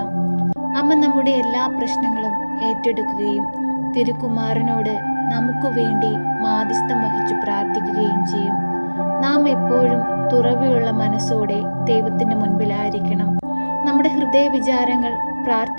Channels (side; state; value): both; inverted; correlation -1.00